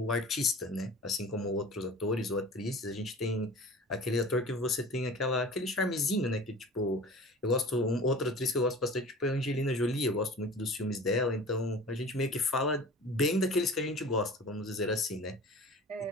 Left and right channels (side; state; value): both; normal; correlation 0.40